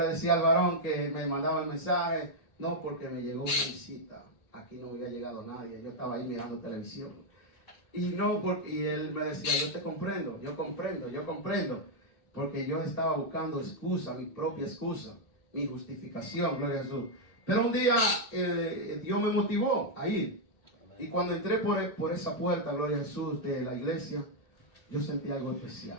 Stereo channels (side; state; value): right; late; 1.8 ms